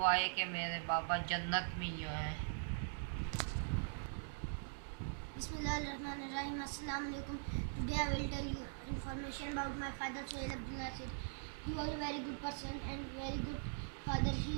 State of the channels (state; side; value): silent; left; digital silence